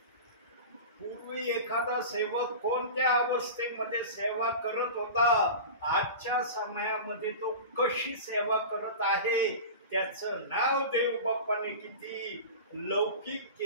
पूर्वी एखादा सेवक कोणत्या अवस्थेमध्ये सेवा करत होता, आजच्या समयामध्ये तो कशी सेवा करत आहे, त्याचं नाव देव बाप्पाने किती लौकिक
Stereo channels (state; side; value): inverted; both; correlation -0.31